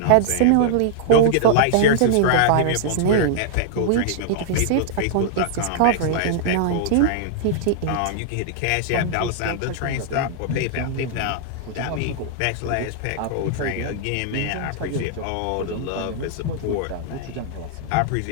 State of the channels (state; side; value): different; both; correlation -0.01